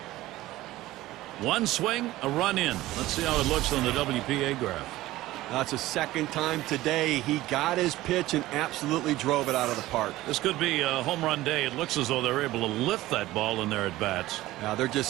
One swing, a run in. Let's see how it looks on the WPA graph. That's the second time today he got his pitch and absolutely drove it out of the park. This could be a home run day. It looks as though they're able to lift that ball in their at-bats. Now they're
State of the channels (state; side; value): quieter; left; 16.8 dB